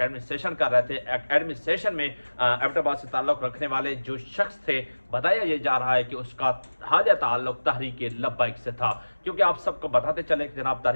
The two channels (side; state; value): both; inverted; correlation -1.00